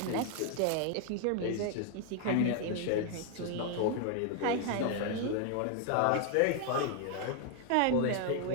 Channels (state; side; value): different; both; correlation 0.00